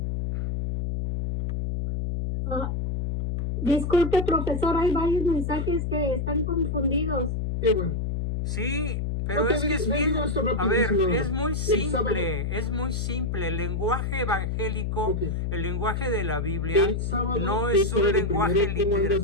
Disculpe, profesor, hay varios mensajes que están confundidos. Qué bueno. Sí, pero Ok, es que es le bien, digo esto a ver, rapidísimo. es muy El sábado- simple, es muy simple. El lenguaje evangélico, Ok. el lenguaje de la Biblia, El sábado, no ¿qué es un horario lenguaje primero? ¿Cómo literal. andas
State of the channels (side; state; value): left; noise; hum, 1 dB below the sound